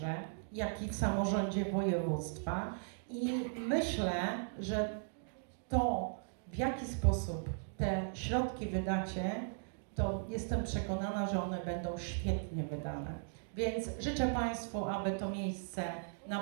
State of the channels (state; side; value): silent; left; digital silence